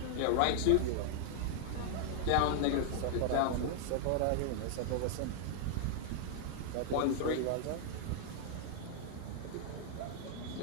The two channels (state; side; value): different; both; correlation 0.00